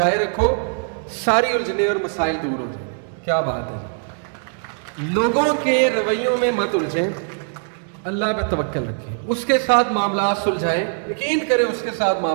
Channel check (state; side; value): silent; left; 65 dB below the other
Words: رکھو، ساری الجھنے اور مسائل دور ہو جائیں۔ کیا بات ہے، لوگوں کے رویوں میں مت الجھیں، اللہ پہ توکل رکھیں، اس کے ساتھ معاملات سلجھائیں، یقین کریں اس کے ساتھ